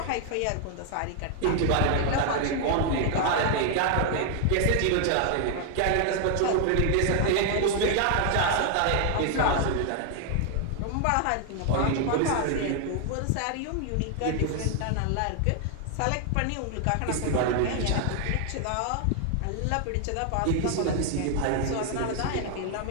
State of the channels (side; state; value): both; different; correlation 0.00